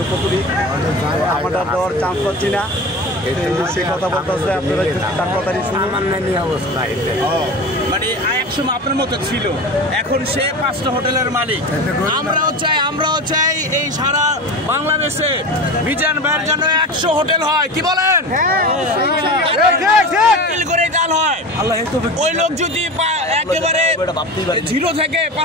কতটি আমরা দেওয়ার চান্স পাচ্ছি না। সে কথা বলতেছে, আপনারা একটু তার কথাই শুনুন। মানে একসময় আপনার মতো ছিল, এখন সে 5টা হোটেলের মালিক। আমরাও চাই এই সারা বাংলাদেশে মিজান ভাইয়ের জন্য 100 হোটেল হয়। কি বলেন? করে চাল হয়। ওই লোক যদি একেবারে 0 থেকে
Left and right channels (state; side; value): normal; both; correlation 0.29